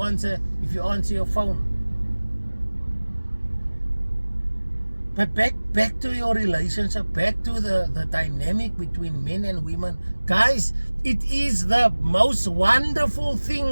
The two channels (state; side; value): inverted; both; correlation -1.00